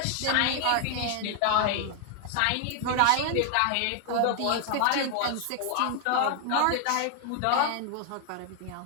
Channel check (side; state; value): both; different; correlation 0.00